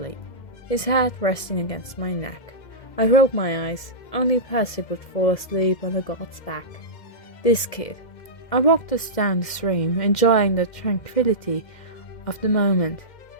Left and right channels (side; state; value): right; late; 2.1 ms